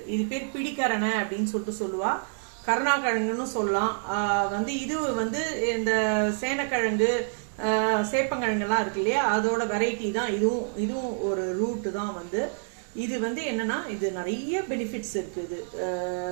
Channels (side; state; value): left; silent; digital silence